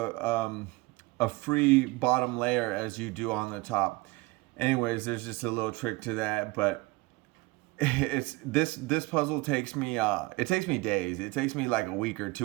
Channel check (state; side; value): quieter; left; 22.6 dB